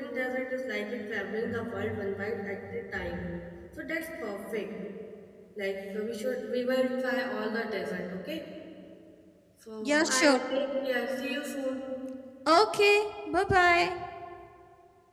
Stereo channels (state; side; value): identical; both; correlation 1.00